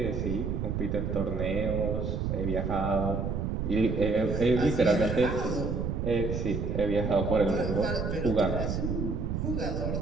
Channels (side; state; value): right; noise; rumble, 1 dB below the sound